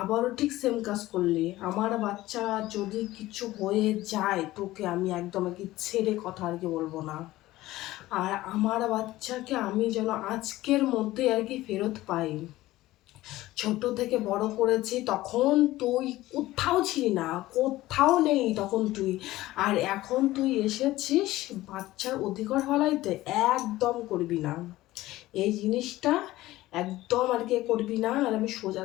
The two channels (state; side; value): quieter; right; 16.8 dB